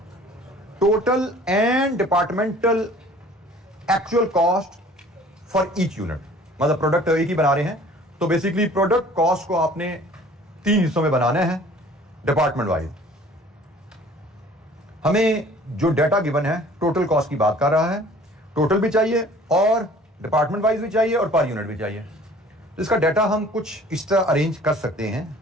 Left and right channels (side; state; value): both; normal; correlation 0.50